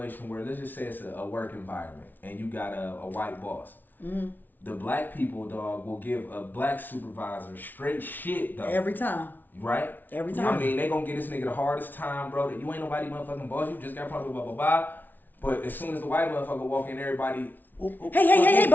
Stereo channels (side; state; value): right; late; 0.087 ms